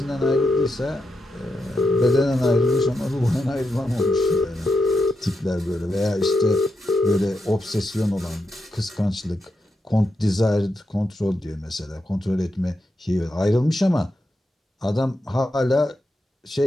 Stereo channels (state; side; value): normal; both; correlation 0.85